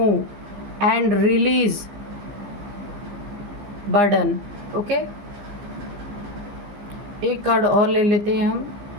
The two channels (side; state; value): left; late; 15 ms